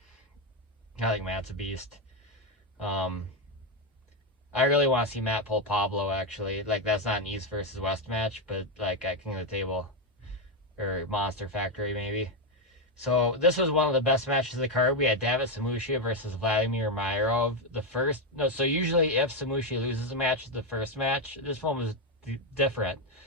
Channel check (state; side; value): normal; both; correlation 0.06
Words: I think Matt's a beast. I really want to see Matt pull Pablo, actually. Like, that's not an East versus West match, but like at King of the Table or Monster Factory maybe. So this was one of the best matches of the card. We had David Samushia versus Vladimir Miro. So usually if Samushia loses a match, the first match, this one was different.